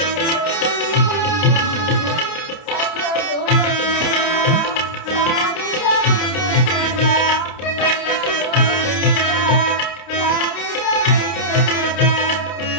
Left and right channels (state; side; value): late; right; 29 ms